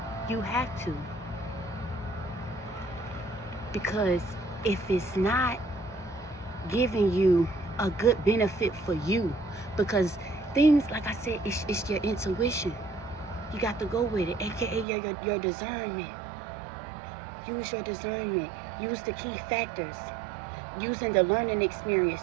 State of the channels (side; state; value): left; drops out; at 14.9 s